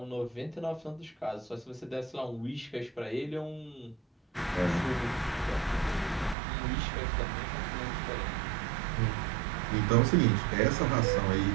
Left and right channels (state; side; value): drops out; left; at 6.4 s